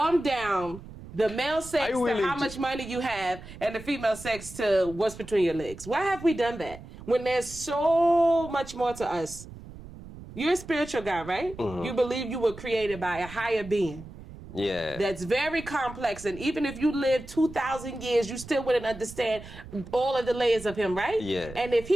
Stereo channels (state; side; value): noise; right; rumble, 15 dB below the sound